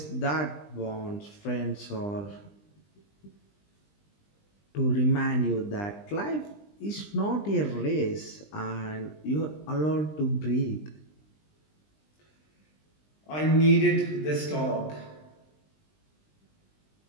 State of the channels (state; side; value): late; right; 20 ms